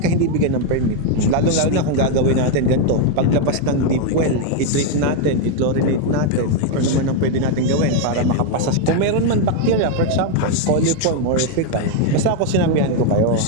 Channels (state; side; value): different; both; correlation 0.01